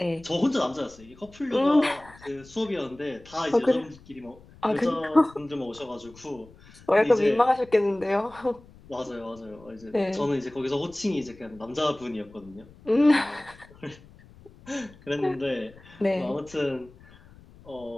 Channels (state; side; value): noise; left; rumble, 23 dB below the sound